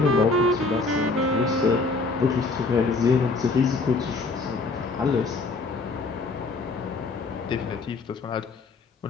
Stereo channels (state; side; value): quieter; right; 3.7 dB